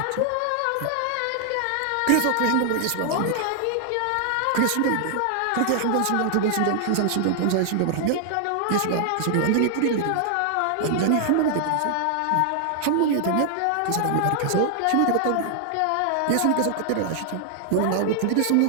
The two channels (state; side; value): different; both; correlation 0.00